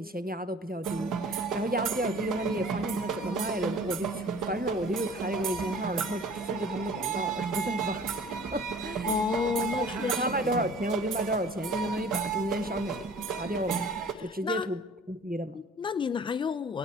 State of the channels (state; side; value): normal; both; correlation 0.47